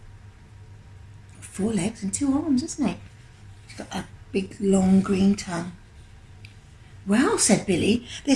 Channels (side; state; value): both; identical; correlation 1.00